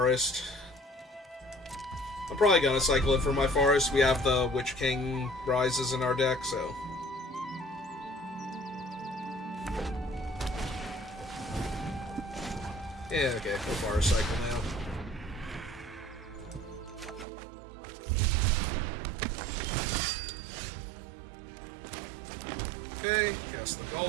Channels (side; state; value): left; drops out; at 17.2 s